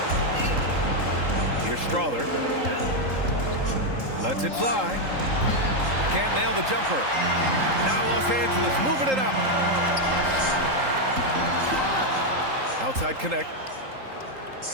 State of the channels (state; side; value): late; left; 3.8 ms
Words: Here's Strother. Lets it fly. Can't nail the jumper. Now Los Angeles moving it up. Outside Connect.